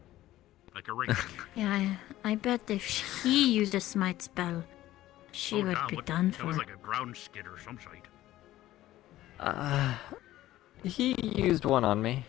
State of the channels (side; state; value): right; quieter; 15.0 dB